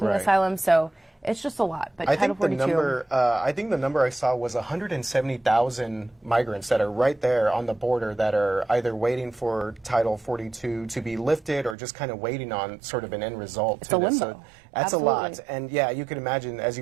asylum. So It's just a lot. But I Title think the 42, number, I saw was 170,000 migrants that are right there on the border that are either waiting for Title 42 to be lifted or just kind of waiting on sort of an end result. It's to a this. limbo. So that's Absolutely. a lot. And yeah, you can imagine, as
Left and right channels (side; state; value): left; drops out; at 11.8 s